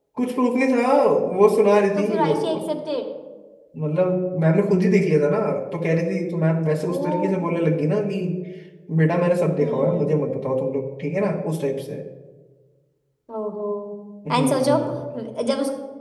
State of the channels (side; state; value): both; identical; correlation 1.00